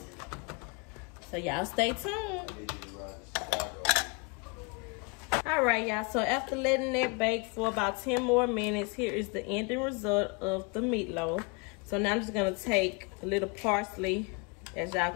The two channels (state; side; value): quieter; right; 31.0 dB